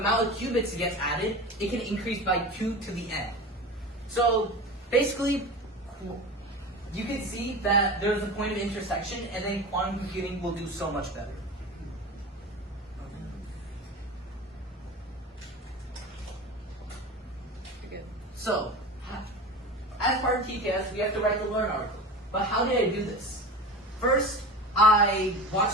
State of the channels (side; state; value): both; normal; correlation 0.31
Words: of qubits it gets added, it can increase by 2 to the n. So, basically, you can see that there's a point of intersection, and then quantum computing will do so much better. So, as part of TKS, we have to write the Learn article. But how did I do this? First, I